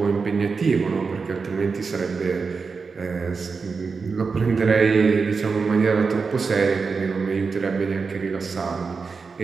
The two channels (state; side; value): quieter; left; 4.9 dB